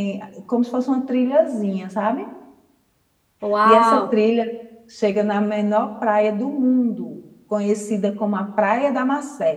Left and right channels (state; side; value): identical; both; correlation 1.00